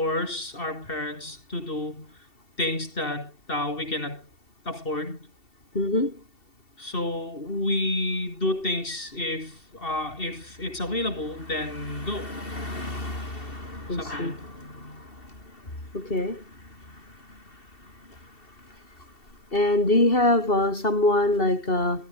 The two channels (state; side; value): late; right; 2.7 ms